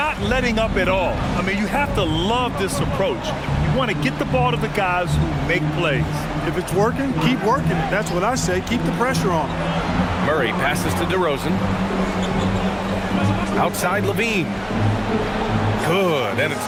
letting up at all. I mean, you have to love this approach. You want to get the ball to the guys who make plays. If it's working, keep working it. That's what I say. Keep the pressure on. Murray passes to DeRozan. Outside Levine. Good, and it's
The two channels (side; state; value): both; identical; correlation 1.00